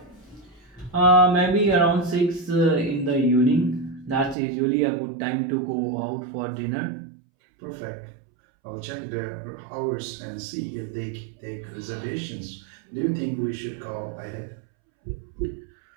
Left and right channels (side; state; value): left; drops out; at 4.4 s